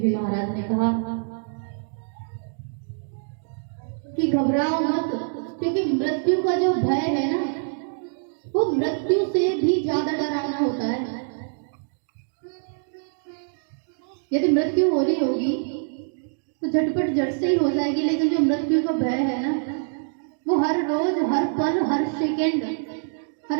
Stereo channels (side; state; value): left; silent; digital silence